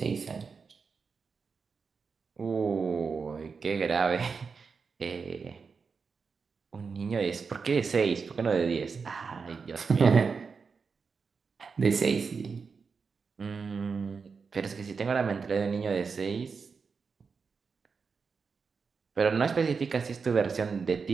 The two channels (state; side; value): quieter; left; 5.3 dB